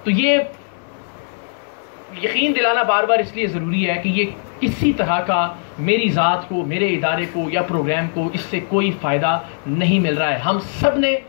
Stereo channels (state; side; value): silent; right; 66 dB below the other